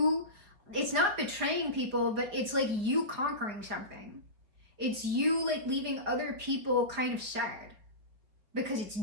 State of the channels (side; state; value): left; late; 4.9 ms